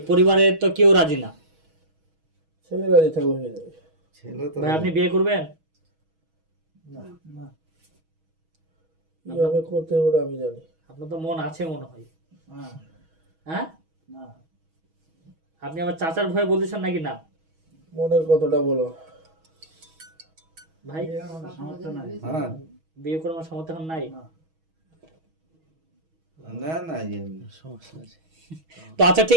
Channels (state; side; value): late; left; 6.2 ms